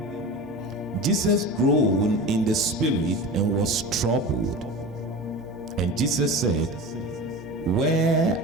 Jesus groaned in the spirit and was troubled. And Jesus said, where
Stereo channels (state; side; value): normal; both; correlation 0.31